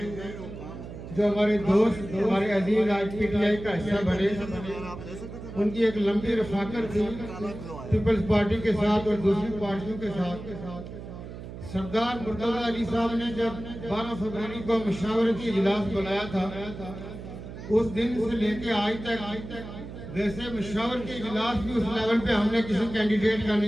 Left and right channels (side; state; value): right; noise; hum, 11 dB below the sound